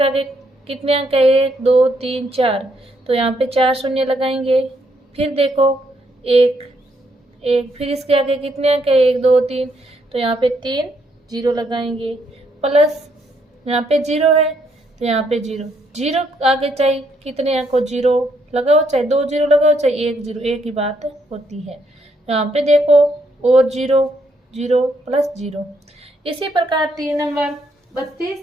आगे कितने अंक है? 1 2 3 4, तो यहाँ पे 4 शून्य लगाएंगे। फिर देखो 1, फिर इसके आगे कितने अंक है? 1 2 3, तो यहाँ पे 3 0 लगाएंगे। प्लस यहाँ पे 0 है तो यहाँ पे 0 आगे चाहे कितने अंक को 0 लगाओ, चाहे 2 0 लगाओ, चाहे 1 0, एक ही बात होती है। यहाँ पे देखो और 0 0 प्लस 0। इसी प्रकार 3 नंबर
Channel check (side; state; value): both; normal; correlation 0.73